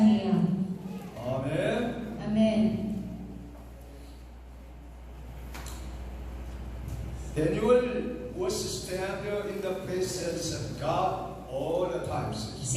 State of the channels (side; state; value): both; identical; correlation 1.00